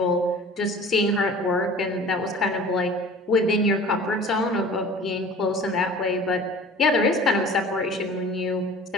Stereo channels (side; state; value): both; normal; correlation 0.44